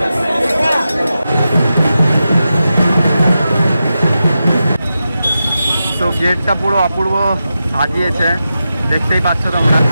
গেটটা পুরো অপূর্ব সাজিয়েছে, দেখতেই পাচ্ছ তোমরা।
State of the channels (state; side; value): inverted; both; correlation -0.90